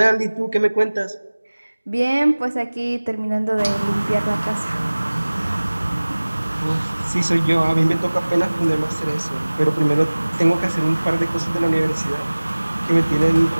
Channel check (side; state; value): both; inverted; correlation -1.00